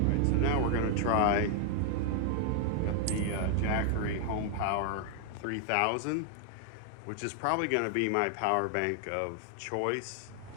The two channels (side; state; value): both; different; correlation 0.00